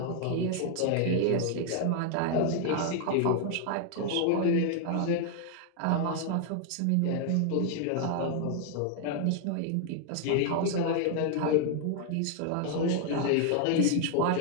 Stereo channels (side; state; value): both; different; correlation 0.00